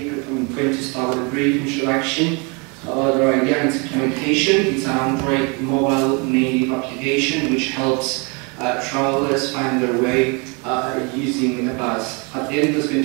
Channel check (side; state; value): left; quieter; 31.6 dB